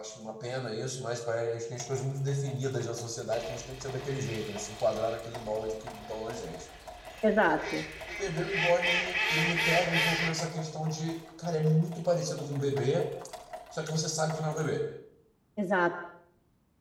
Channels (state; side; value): identical; both; correlation 1.00